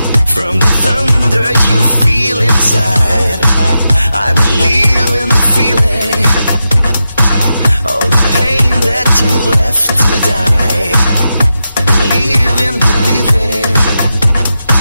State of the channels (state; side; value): inverted; both; correlation -0.89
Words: from the thunder you feel inside. I believe in the feeling, all the pain that you left to die. Believe in believing